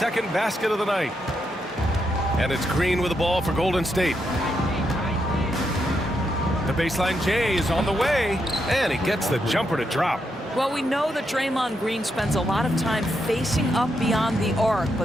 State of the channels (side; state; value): both; normal; correlation 0.81